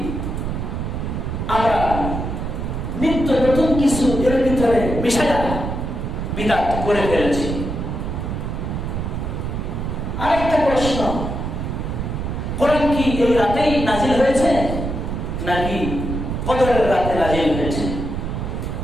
আমরা নিত্য নতুন কিছু এর ভিতরে মিশায়া বিদআত করে ফেলেছি? আরেকটা প্রশ্ন, কোরআন কি এই রাতেই নাজিল হয়েছে নাকি কদরের রাতে নাজিল হয়েছে?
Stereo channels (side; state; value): right; noise; rumble, 4 dB below the sound